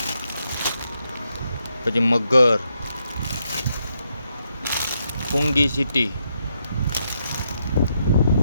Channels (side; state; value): both; inverted; correlation -0.79